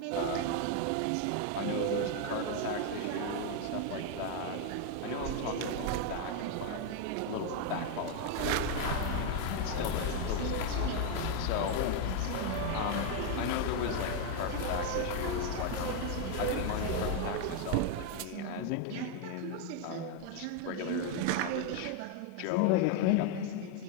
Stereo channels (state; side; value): different; both; correlation 0.01